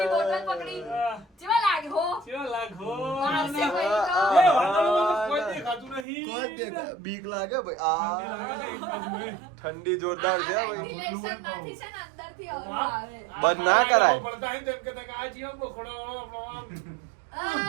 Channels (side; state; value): left; drops out; at 6.1 s